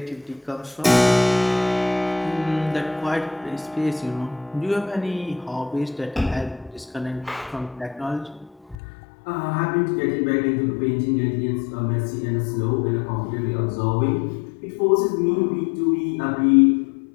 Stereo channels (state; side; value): drops out; right; at 8.8 s